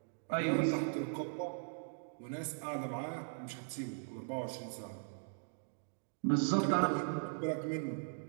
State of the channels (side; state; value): left; silent; digital silence